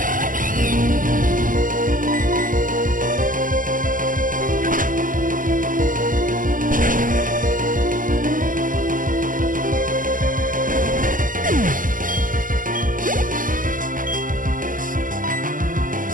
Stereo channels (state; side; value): late; left; 0.39 ms